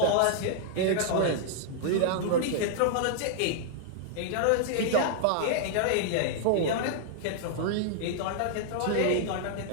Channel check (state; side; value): different; both; correlation -0.01